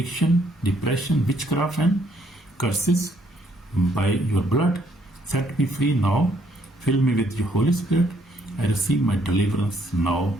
depression, witchcraft, and curses. By your blood, set me free now. Fill me with your Holy Spirit. I receive my deliverance now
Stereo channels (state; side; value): normal; both; correlation 0.68